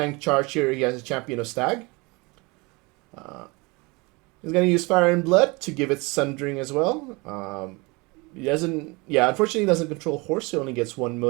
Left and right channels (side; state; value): left; quieter; 26.4 dB